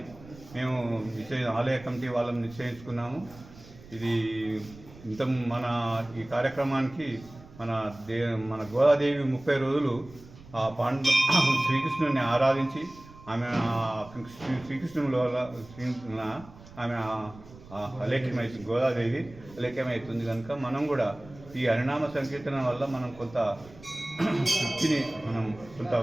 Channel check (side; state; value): right; noise; rumble, 20 dB below the sound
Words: మేము ఆలయ కమిటీ వాళ్ళని నిశ్చయించుకున్నాము. ఇది ఈ కార్యక్రమానికి మన గోదాదేవి 30 రోజులు ఆ శ్రీకృష్ణుని ఆరాధించి ఆమె ఆమె అలేఖ్యమవుతుంది, గోదాదేవి అలేఖ్యమవుతుంది. కనుక మనం కూడా ఈ హరినామ సంకీర్తన వల్ల మనం కొంత శక్తిని కొంత